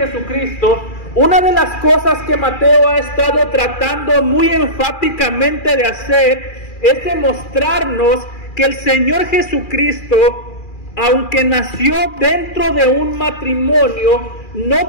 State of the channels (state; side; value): late; right; 2.4 ms